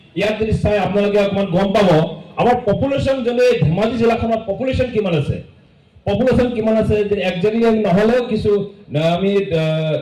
ইয়াত যদি চাই আপোনালোকে অকণমান গম পাব আমাৰ পপুলেশ্যন যদি ধেমাজি জিলাখনত পপুলেশ্যন কিমান আছে, পপুলেশ্যন কিমান আছে একজেক্টলি নহ'লেও কিছু আমি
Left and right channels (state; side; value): identical; both; correlation 1.00